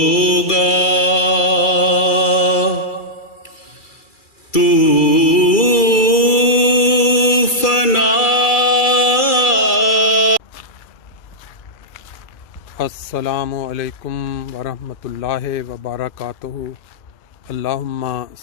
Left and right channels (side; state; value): right; late; 2.3 ms